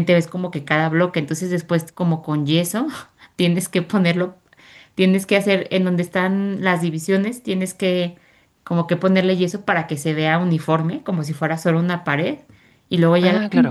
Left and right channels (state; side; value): identical; both; correlation 1.00